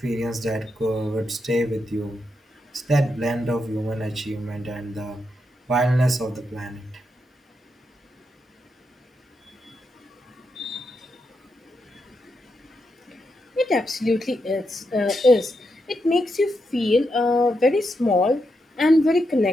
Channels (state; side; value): normal; both; correlation 0.83